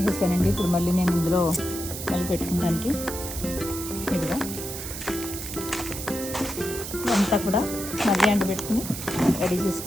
ఇప్పుడు మళ్ళీ నేను ఇందులో మళ్ళీ పెట్టుకోవడానికి ఇదిగా అంతా కూడా మళ్ళీ ఎండబెట్టుకుని రెడీ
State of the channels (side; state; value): right; noise; hiss, 8 dB below the sound